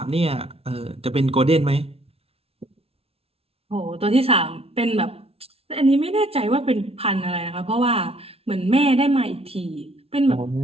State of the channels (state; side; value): late; left; 0.29 ms